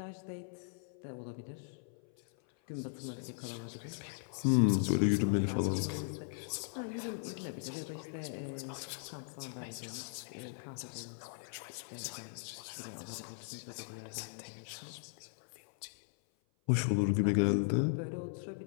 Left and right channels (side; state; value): right; silent; 52 dB below the other